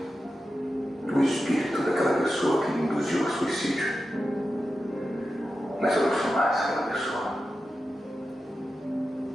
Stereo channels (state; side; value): normal; both; correlation 0.91